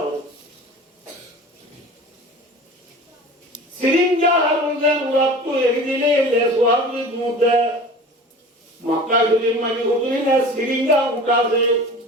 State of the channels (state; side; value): normal; both; correlation 0.39